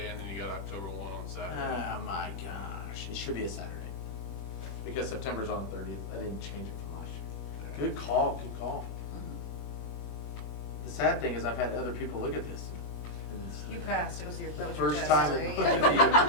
and then you got October 1 on Saturday. Oh my gosh, it should be a Saturday. Because September's on the 30th. I didn't change it from last year. Good call, good call. The sad thing is I've had other people look at this. and it's You passed, that was your First test. time There in you go.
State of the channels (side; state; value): right; late; 21 ms